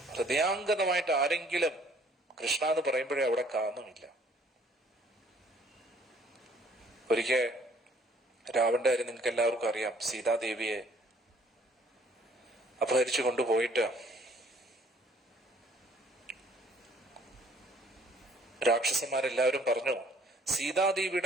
ഹൃദയാംഗതമായിട്ട് ആരെങ്കിലും കൃഷ്ണ എന്ന് പറയുമ്പോഴേ അവിടെ കാമമില്ല. ഒരിക്കൽ രാവണന്റെ കാര്യം നിങ്ങൾക്ക് എല്ലാവർക്കും അറിയാം. സീതാദേവിയെ അപഹരിച്ചു കൊണ്ടുപോയിട്ട് രാക്ഷസന്മാരെല്ലാവരും പറഞ്ഞു,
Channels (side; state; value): both; normal; correlation 0.59